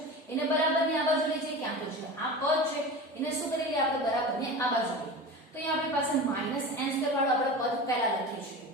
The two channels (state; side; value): normal; both; correlation 0.31